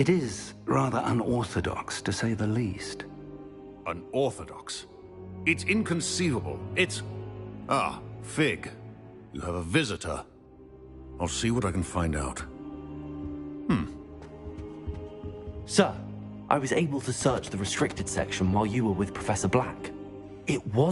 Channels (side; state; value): both; identical; correlation 1.00